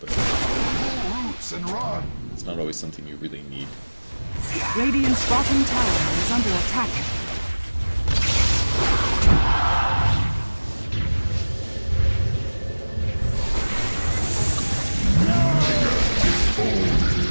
it's not always something you really need. Radiant's bottom tower is under attack.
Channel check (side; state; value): both; inverted; correlation -1.00